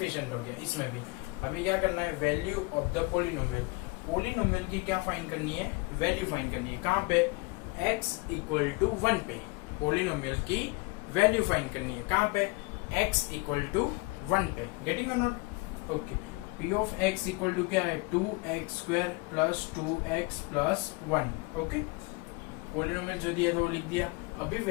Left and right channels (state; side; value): quieter; right; 25.7 dB